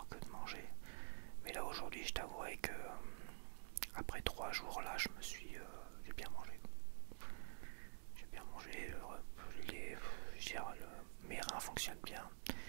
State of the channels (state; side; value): silent; left; digital silence